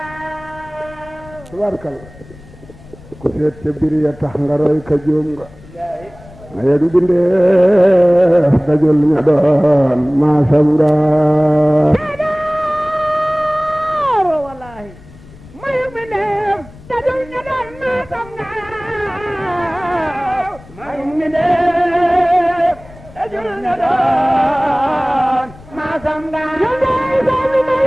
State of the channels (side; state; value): left; noise; rumble, 21 dB below the sound